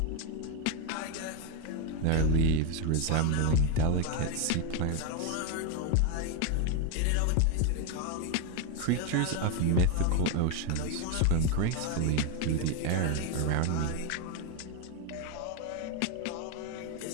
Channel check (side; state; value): both; different; correlation 0.01